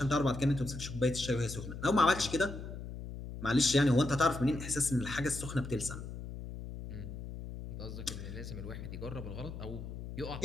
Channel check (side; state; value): left; noise; hum, 9 dB below the sound